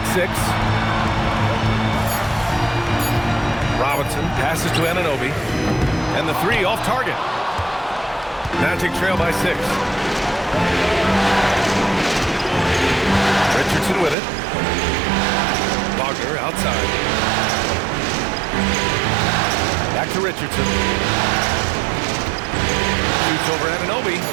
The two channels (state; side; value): drops out; left; at 14.2 s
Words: 6. Robinson passes to Anunoby. And the 3 off target. Magic trail by 6. Richardson with it. Wagner outside. Back to Richardson. Shoots over Anunoby.